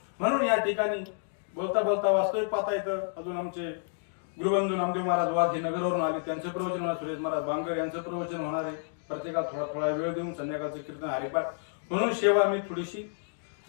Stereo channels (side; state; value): right; silent; digital silence